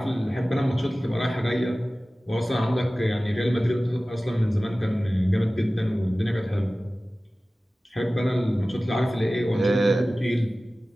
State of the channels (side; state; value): both; normal; correlation 0.97